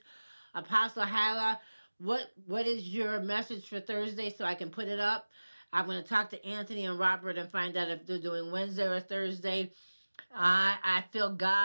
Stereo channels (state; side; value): inverted; both; correlation -1.00